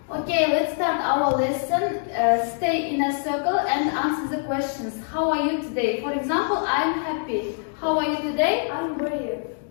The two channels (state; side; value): silent; right; digital silence